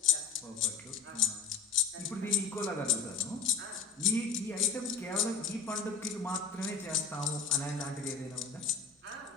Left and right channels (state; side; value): quieter; right; 5.5 dB